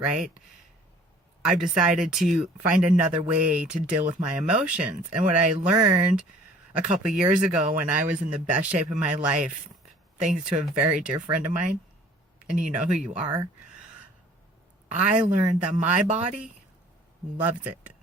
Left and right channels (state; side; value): normal; both; correlation 0.52